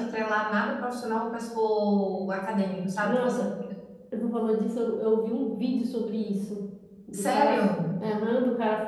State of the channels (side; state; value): both; identical; correlation 1.00